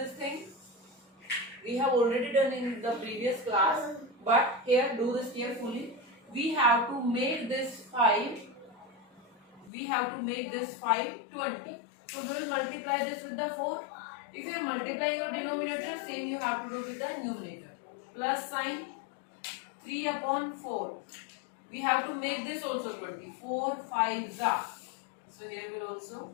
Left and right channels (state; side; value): drops out; right; at 9.7 s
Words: thing. We have already done in the previous class, but here do this carefully. We have to make this 5 20. So we will multiply this with the 4. If you are multiplying your denominator, same you have to do with the numerator. Plus sign 3 upon 4. We have to make this also 20. 4 5s are. So here will